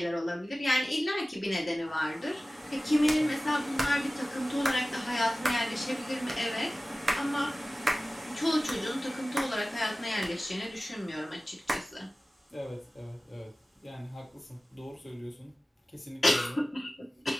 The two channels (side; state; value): both; normal; correlation 0.97